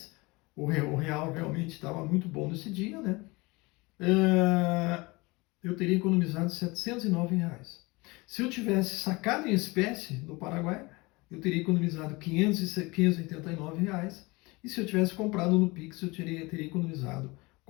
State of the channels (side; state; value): right; quieter; 24.4 dB